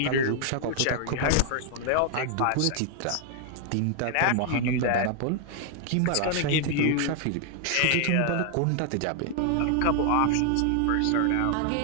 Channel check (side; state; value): both; different; correlation 0.00